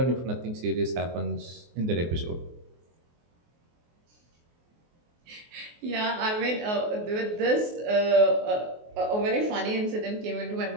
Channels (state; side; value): late; left; 24 ms